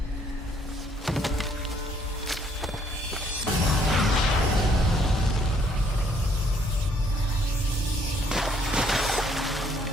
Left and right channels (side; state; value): both; normal; correlation 0.66